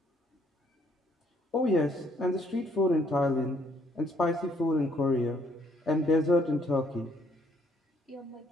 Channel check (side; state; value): both; normal; correlation 0.67